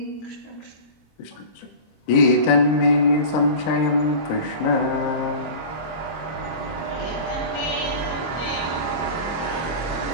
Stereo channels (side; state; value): right; late; 26 ms